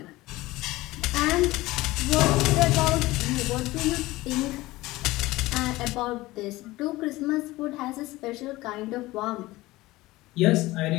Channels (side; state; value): right; quieter; 19.0 dB